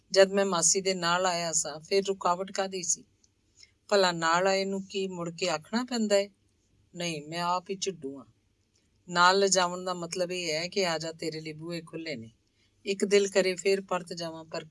ਜਦ ਮੈਂ ਮਾਸੀ ਦੇ ਨਾਲ ਆਇਆ ਸਾਂ ਫਿਰ ਰੁਕਾਵਟ ਕਾਹਦੀ ਸੀ? ਭਲਾ ਨਾਲ ਆਏ ਨੂੰ ਕੀ ਮੁੜ ਕੇ ਆਖਣਾ ਪੈਂਦਾ ਹੈ? ਨਹੀਂ, ਮੈਂ ਆਪ ਹੀ ਝਿੱਡੂ ਹਾਂ। ਨਾਲ ਲਿਜਾਵਣ ਦਾ ਮਤਲਬ ਇਹ ਹੈ ਕਿ ਆ ਜਾ, ਤੇਰੇ ਲਈ ਬੂਹੇ ਖੁੱਲੇ ਨੇ। ਇੱਕ ਦਿਲ ਕਰੇ ਫੇਰ ਪਰਤ ਜਾਵਾਂ, ਪਰ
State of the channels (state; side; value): identical; both; correlation 1.00